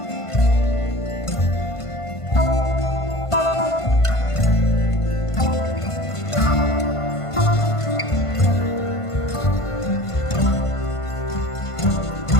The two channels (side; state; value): right; late; 1.5 ms